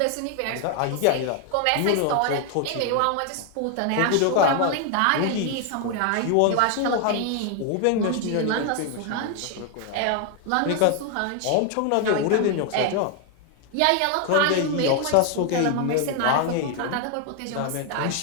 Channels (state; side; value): different; both; correlation 0.00